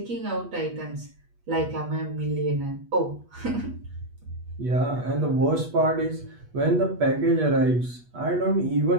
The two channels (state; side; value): late; left; 8.3 ms